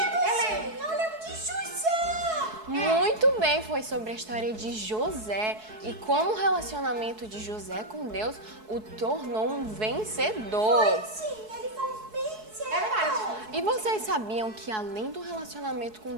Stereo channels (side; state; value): left; late; 4.7 ms